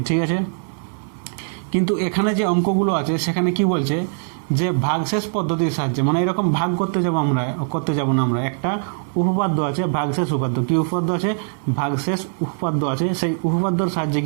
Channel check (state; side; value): silent; left; 60 dB below the other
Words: ঠিক আছে। কিন্তু এখানে যে অঙ্কগুলো আছে সেখানে কি বলছে যে ভাগশেষ পদ্ধতির সাহায্যে, মানে এরকম ভাগ করতে যাব না আমরা, একটা উপপাদ্য আছে ভাগশেষ উপপাদ্য। কি উপপাদ্য আছে? ভাগশেষ উপপাদ্য আছে। সেই উপপাদ্যর সাহায্যে